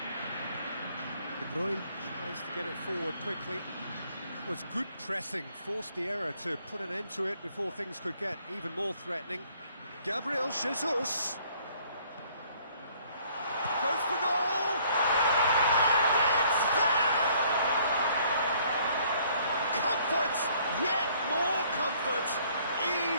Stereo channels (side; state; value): both; inverted; correlation -0.61